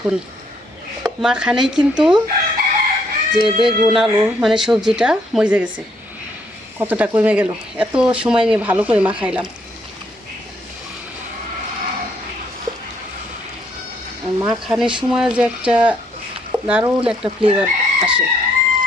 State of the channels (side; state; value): both; normal; correlation 0.70